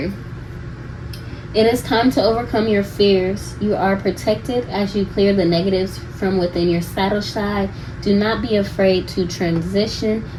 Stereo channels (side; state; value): both; identical; correlation 1.00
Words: It is time to overcome your fears. You are protected as you clear the negatives from within your saddle side. Do not be afraid to transition.